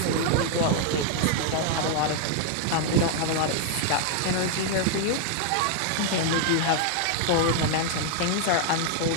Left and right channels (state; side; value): different; both; correlation 0.00